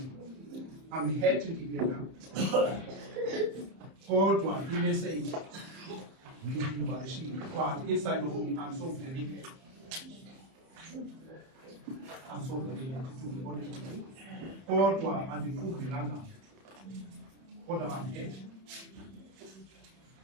I'm happy to hear that. Kodwa i-message but inside of me, I'm so very glad. I'm so very glad to be honest with you. Kodwa andiqubhelanga. Kodwa I'm happy.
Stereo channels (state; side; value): late; left; 31 ms